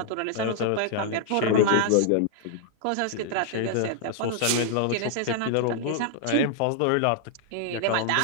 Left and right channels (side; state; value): both; different; correlation 0.00